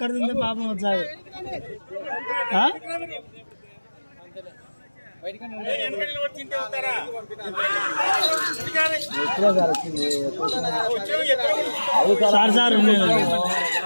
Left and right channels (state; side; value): inverted; both; correlation -1.00